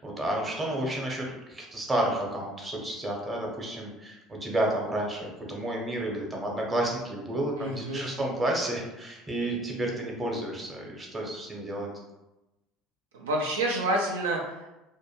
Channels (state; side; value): normal; both; correlation 0.52